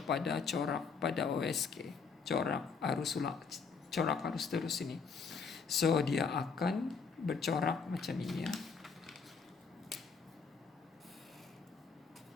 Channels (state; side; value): quieter; right; 5.3 dB